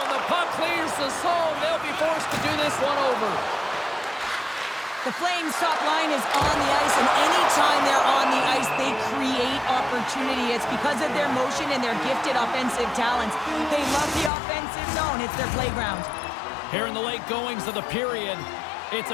and the puck clears the zone. They'll be forced to do this one over. The Flames' top line is on the ice, and anytime they're on the ice, they create opportunity. It's because of their motion and their gifted offensive talents. They love the offensive zone. It's their playground. Here in the late goings of the period, it's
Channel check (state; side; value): drops out; right; at 14.3 s